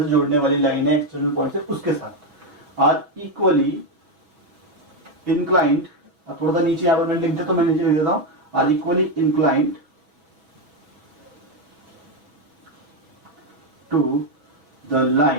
से जोड़ने वाली लाइन है एक्सटर्नल पॉइंट से उसके साथ, आर इक्वली इंक्लाइंड। अब थोड़ा सा नीचे यहाँ पर मैंने लिख दिया, तो मैं नीचे लिख देता हूं, are equally inclined to the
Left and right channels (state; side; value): late; left; 6.2 ms